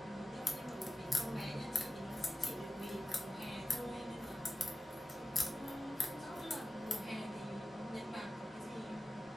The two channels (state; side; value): normal; both; correlation 0.93